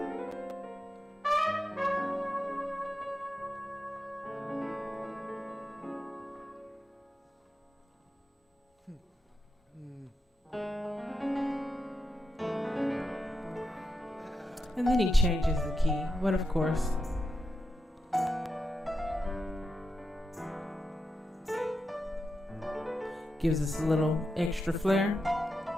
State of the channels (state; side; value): normal; both; correlation 0.87